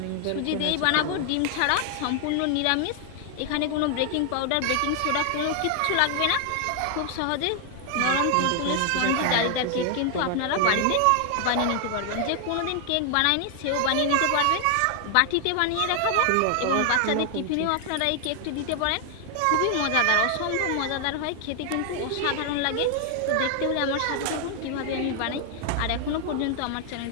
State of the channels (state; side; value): different; both; correlation 0.00